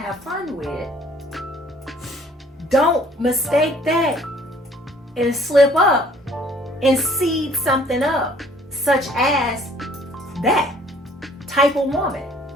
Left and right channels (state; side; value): normal; both; correlation 0.57